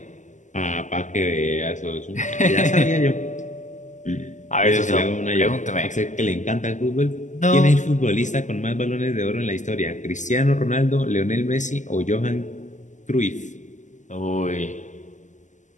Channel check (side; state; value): right; late; 0.36 ms